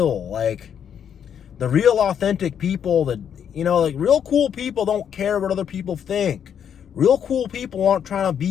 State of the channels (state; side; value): quieter; right; 8.4 dB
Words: Like, the real authentic people that, like real cool people don't care what other people think. Real cool people aren't trying to